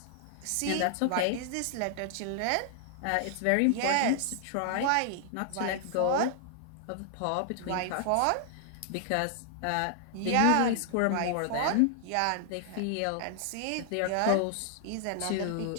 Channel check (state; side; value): different; both; correlation 0.00